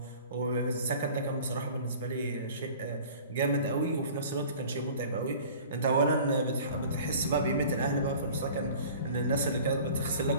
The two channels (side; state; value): both; inverted; correlation -0.45